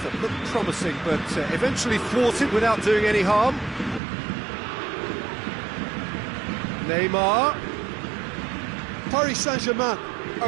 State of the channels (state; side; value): drops out; left; at 4.0 s